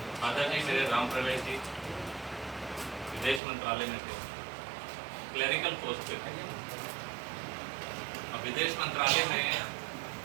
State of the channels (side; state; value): left; drops out; at 3.4 s